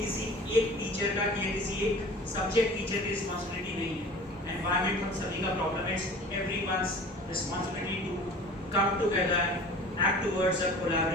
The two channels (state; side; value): normal; both; correlation 0.42